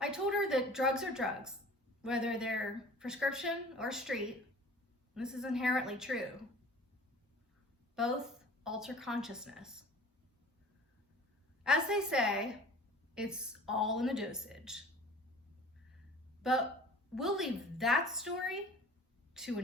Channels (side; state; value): both; normal; correlation 0.45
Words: I told her that drugs are drugs, whether they're prescription or street. This is inherently true. Both alter consciousness. As they say, it's all in the dosage. But we'll leave that story to